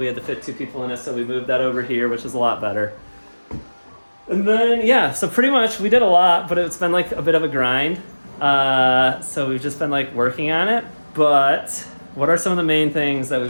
had to fit 2 people in it, so we moved that over here, which is a lot better. And then, yeah, so pretty much we did a lot, but it's been like a bit of a grind. So we've just been like working on it. But what are some of the main things that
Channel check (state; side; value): inverted; both; correlation -1.00